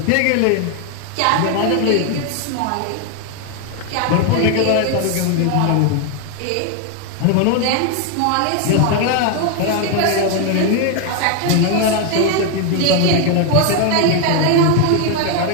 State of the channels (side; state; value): both; different; correlation 0.01